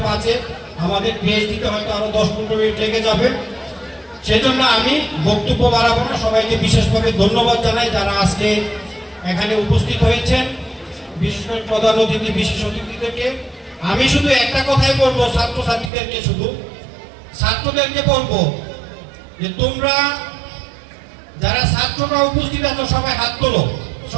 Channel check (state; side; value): drops out; left; at 15.9 s